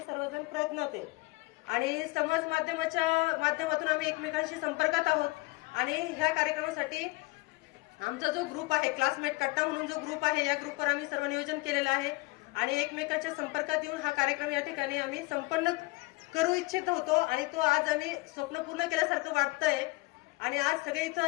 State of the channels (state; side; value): quieter; right; 23.7 dB